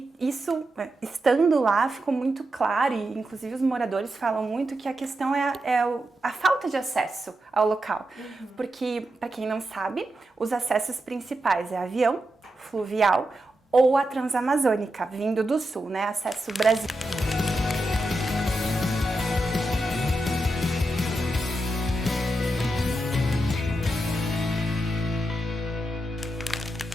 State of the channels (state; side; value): normal; both; correlation 0.87